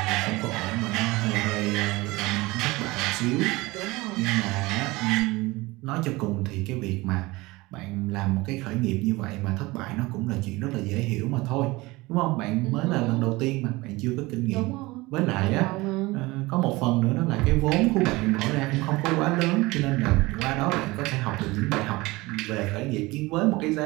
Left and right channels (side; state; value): left; quieter; 21.5 dB